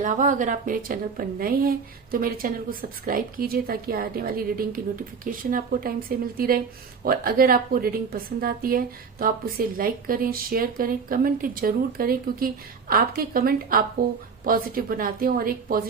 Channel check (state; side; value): quieter; left; 5.6 dB